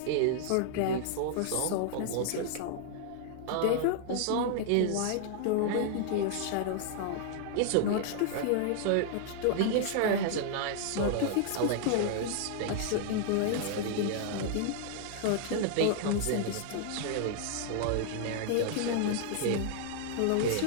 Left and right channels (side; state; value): both; different; correlation -0.01